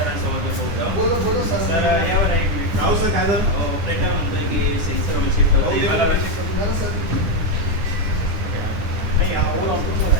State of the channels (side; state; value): left; late; 10 ms